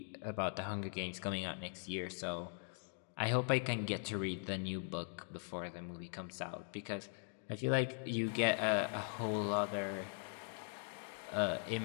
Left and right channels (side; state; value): right; silent; 50 dB below the other